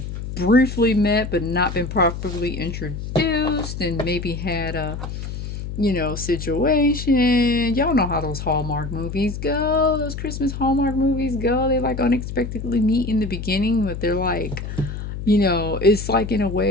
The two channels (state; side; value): noise; left; hum, 7 dB below the sound